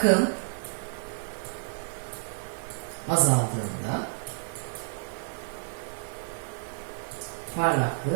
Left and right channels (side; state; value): left; silent; 58 dB below the other